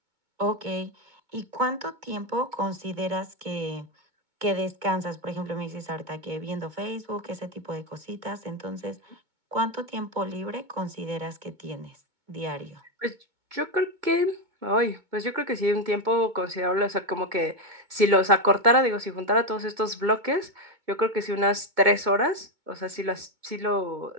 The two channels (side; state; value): left; late; 2.2 ms